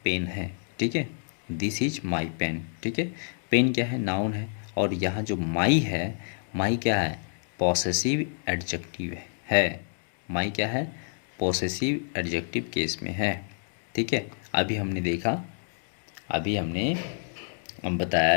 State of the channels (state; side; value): silent; right; digital silence